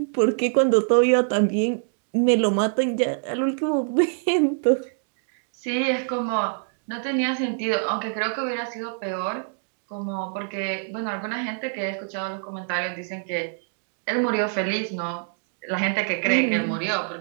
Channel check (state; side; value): silent; left; digital silence